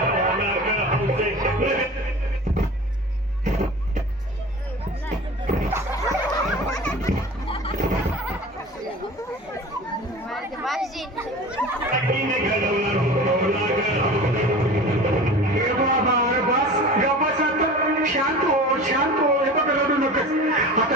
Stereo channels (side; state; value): both; normal; correlation 0.37